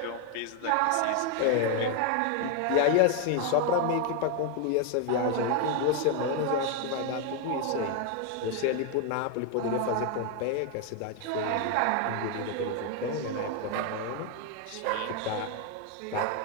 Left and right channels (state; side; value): different; both; correlation 0.01